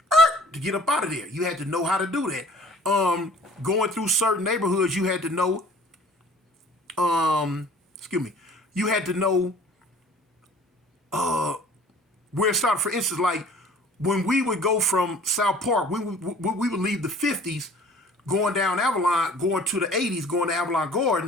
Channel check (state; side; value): normal; both; correlation 0.50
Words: to get up out of there. You had to know how to do that. Going through certain neighborhoods, you had to know, you had to know where it started. For instance, like, when we would go from South Park, we would leave the 50s, going down Avalon, going to the 80s, going to Avalon